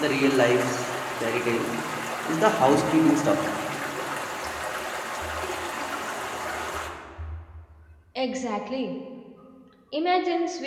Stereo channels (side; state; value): both; identical; correlation 1.00